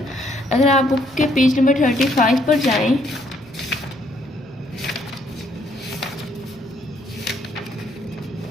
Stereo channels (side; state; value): both; normal; correlation 0.69